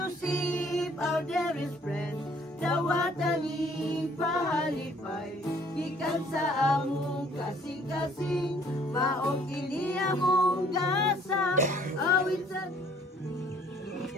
our dearest friend. Dawatan ni pahalipay, gikan sa among kasing-kasing, maong kini among gasa, awit sa...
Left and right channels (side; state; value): both; normal; correlation 0.59